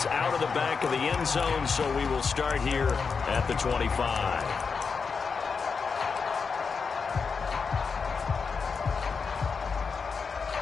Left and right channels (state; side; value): quieter; right; 5.3 dB